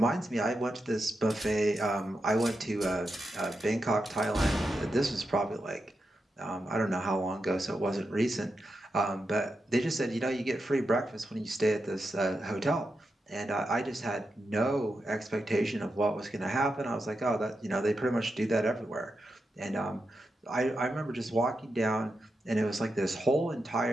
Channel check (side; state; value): both; normal; correlation 0.87